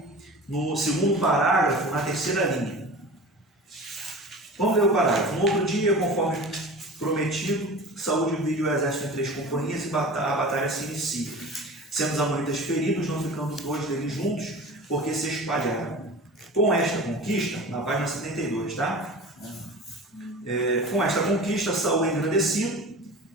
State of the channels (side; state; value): both; normal; correlation 0.36